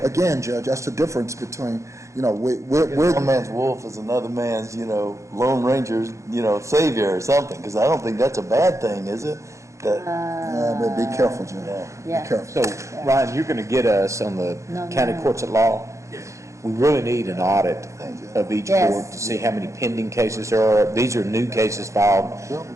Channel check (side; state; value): left; late; 0.15 ms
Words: Again, Judge, that's the difference between, we're One man's wolf is another man's, Lone Ranger's, savior or something, because I don't think that's a bad thing, is it? but be careful, Judge. Yeah. Be careful. So, Ryan, you're going to get us on the No, county no. courts at law? We really need an audit of each Yes. court to see how many pending cases there are. These are new cases filed,